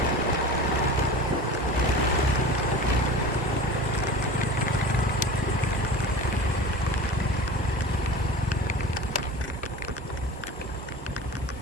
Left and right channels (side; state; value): both; normal; correlation 0.35